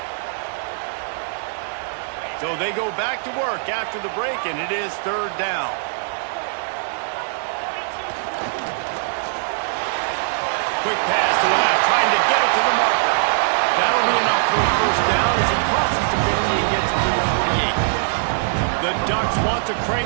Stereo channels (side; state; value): left; silent; 60 dB below the other